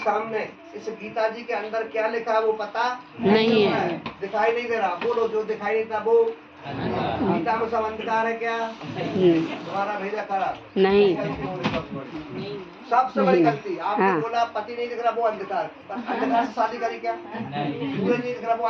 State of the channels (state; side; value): identical; both; correlation 1.00